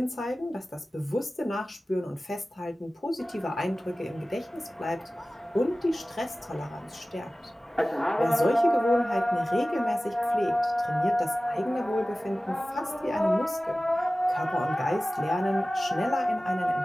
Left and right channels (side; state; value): both; normal; correlation 0.97